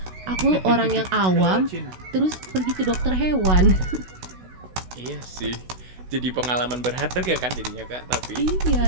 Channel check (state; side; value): late; left; 16 ms